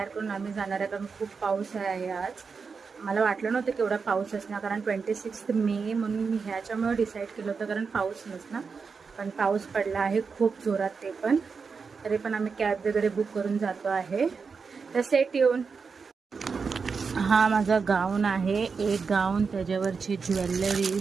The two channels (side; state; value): left; quieter; 5.2 dB